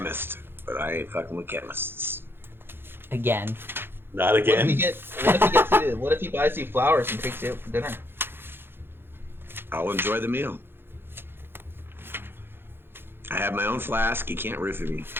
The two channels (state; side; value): late; left; 0.10 ms